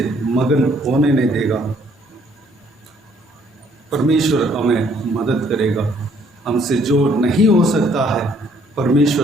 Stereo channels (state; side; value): normal; both; correlation 0.64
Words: मगन होने नहीं देगा। परमेश्वर हमें मदद करेगा। हमसे जो नहीं हो सकता है